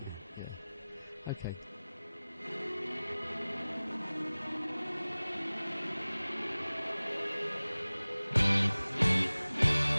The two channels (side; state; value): both; inverted; correlation -0.98